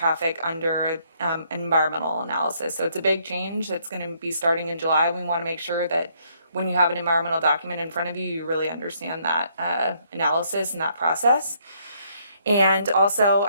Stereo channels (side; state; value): both; inverted; correlation -0.69